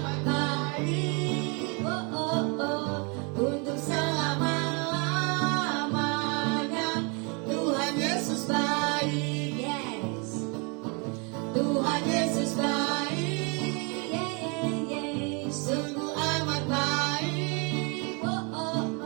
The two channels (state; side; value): quieter; left; 32.8 dB